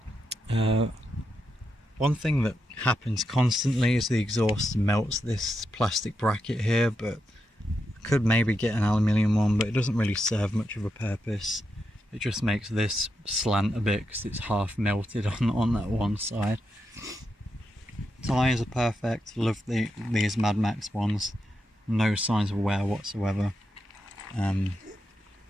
One thing that happens constantly is the exhaust melts this plastic bracket here, but I could maybe get an aluminium one, but it doesn't really serve much of a purpose. It just makes this slant a bit because it's half melted on that one side. Tyres are perfect, love these Mad Max ones, no signs of wear whatsoever. Oh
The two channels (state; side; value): normal; both; correlation 0.85